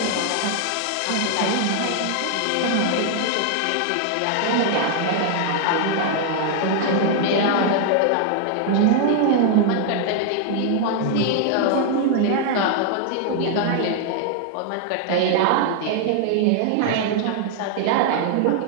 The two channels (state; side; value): different; both; correlation 0.00